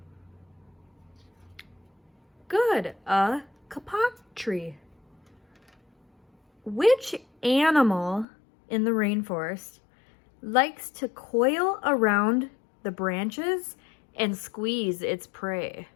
Good, a kapok tree. Which animal in the rainforest likes to coil around the branches and squeeze its prey?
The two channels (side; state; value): right; drops out; at 8.2 s